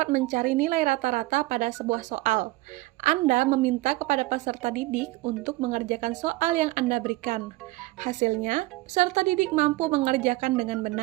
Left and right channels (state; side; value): quieter; left; 20.2 dB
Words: mencari nilai rata-rata pada sebuah soal. Anda meminta kepada peserta didik untuk mengerjakan soal yang Anda berikan. Hasilnya, peserta didik mampu mengerjakan dengan